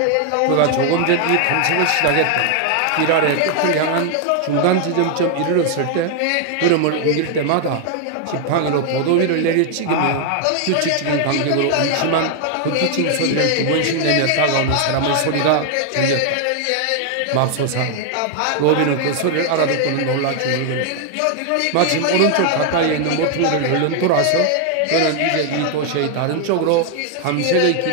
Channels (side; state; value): both; different; correlation 0.00